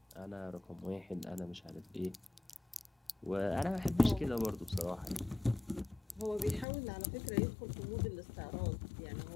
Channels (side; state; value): right; drops out; at 6.7 s